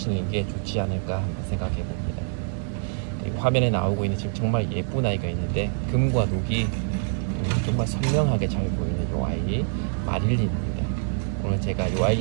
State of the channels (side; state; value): left; silent; 61 dB below the other